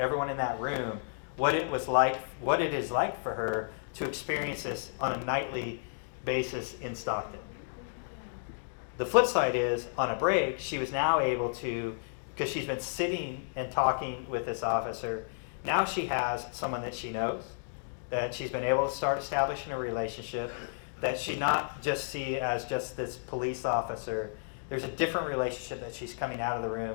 in that room what it was like, what it is like for her to experience this on a nightly basis in Stockton. The flip side is, on a break, she was now able to, because she's been sitting and talking with this officer, now she has someone that she knows, that she's been able to start establishing a relationship, that she not just see as just this police officer. There's a different relationship that she's coming out of the room,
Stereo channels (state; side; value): silent; right; digital silence